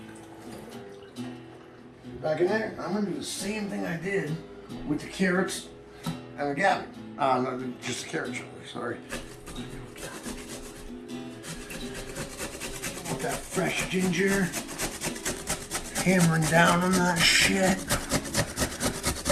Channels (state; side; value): identical; both; correlation 1.00